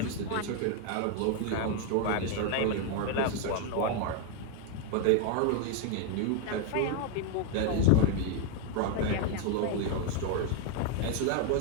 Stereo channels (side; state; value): both; different; correlation 0.01